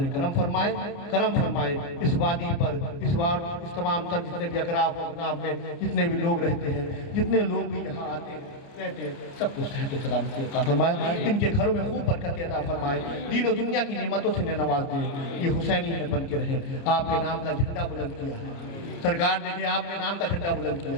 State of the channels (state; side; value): late; right; 29 ms